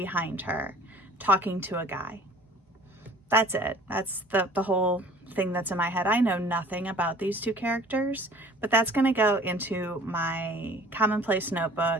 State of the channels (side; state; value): both; normal; correlation 0.50